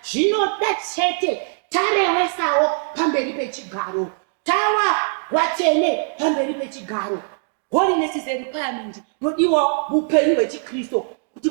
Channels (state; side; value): silent; left; 65 dB below the other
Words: zvinoda chete tarewesawo pamberi pechigaro, tawa vatsvene pamberi pechigaro. Holiness is a requirement nodiwa muupenyu hwechiKristo kuti